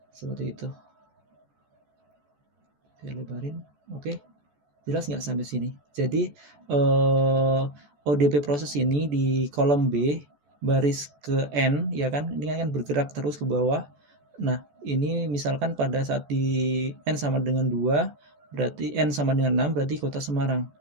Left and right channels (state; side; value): late; left; 14 ms